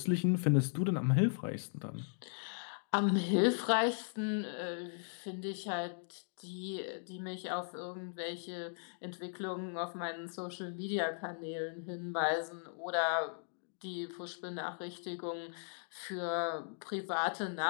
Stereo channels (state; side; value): silent; right; digital silence